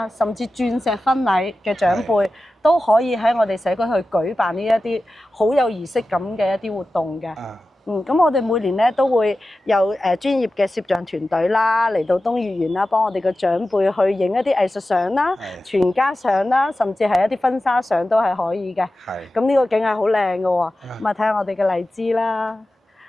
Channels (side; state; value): both; normal; correlation 0.94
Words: 甚至鑽石婚禮嘅長輩都可以喺我哋社區去舉辦呢一啲好有儀式感嘅一啲活動嘅。咁我哋每年咧都會有專業嘅攝像團隊啦，嚟到東月園啦，幫我哋嘅長輩去影一啲藝術相啦、全家相啦，甚至係一啲婚紗相都係可以嘅。咁呢個景係好靚嘅喎，咁啊睇下我哋嘅荔枝啦，